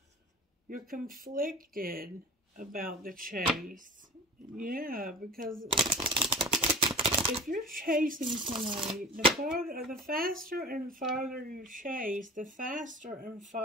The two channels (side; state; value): both; normal; correlation 0.37